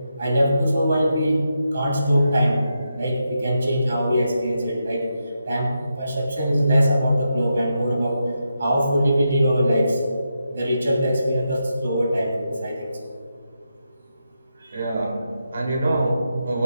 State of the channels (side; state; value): both; inverted; correlation -0.85